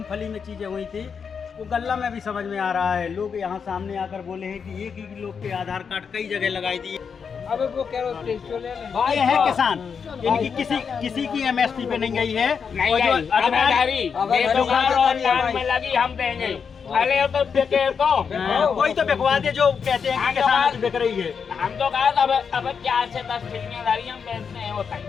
में चीज़ें हुई थी वो गल्ला में भी समझ में आ रहा है। लोग यहाँ सामने आकर बोले हैं कि एक ही लोग के आधार कार्ड कई जगह लगाई दिए। अब वो कह रहे ये है किसान, इनकी किसी की एमएसपी पे नहीं गई है। नहीं गई। में लगी हम देंगे। अरे तो बिके तो कोई तो बिकवा दे जो कहते हैं कि किसान की बिक रही है। हम तो कहा अब 4 से 10 ठेकेदारी हम बेचते हैं होता है।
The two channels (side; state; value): right; quieter; 6.3 dB